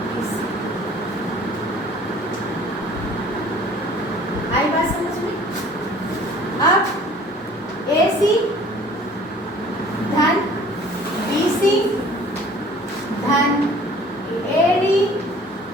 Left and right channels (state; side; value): normal; both; correlation 0.51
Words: इससे। आई बात समझ में? अब ए सी धन बी सी धन ए डी